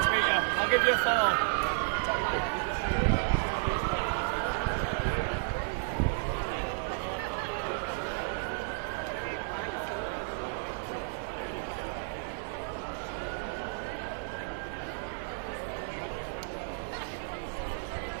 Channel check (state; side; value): silent; left; digital silence